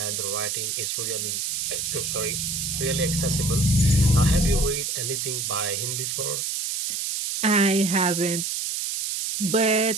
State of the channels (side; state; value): right; noise; hiss, 2 dB below the sound